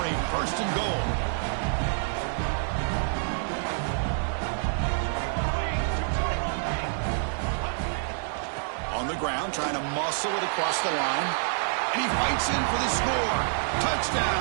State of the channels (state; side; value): silent; left; digital silence